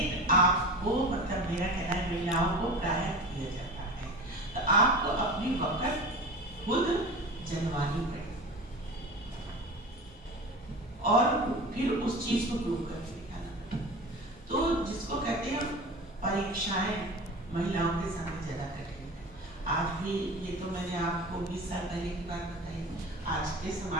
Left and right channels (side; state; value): both; normal; correlation 0.33